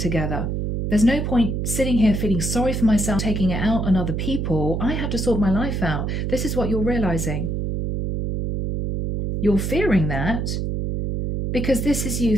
together. There's no point sitting here feeling sorry for myself, taking it out on other people. I have to sort my life out. This is what you're realizing. You're fearing that because this is you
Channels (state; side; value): noise; right; hum, 1 dB below the sound